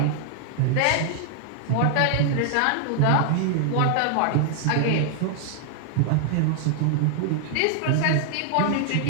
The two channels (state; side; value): different; both; correlation 0.00